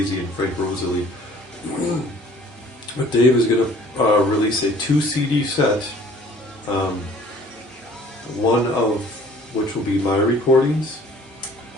and Frank Rosalie. But Dave is going to release a 2 CD set, one of which will be my recordings,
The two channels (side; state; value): both; normal; correlation 0.52